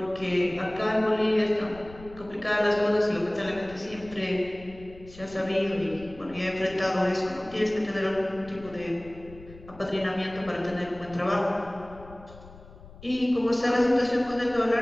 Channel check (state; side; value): noise; left; rumble, 19 dB below the sound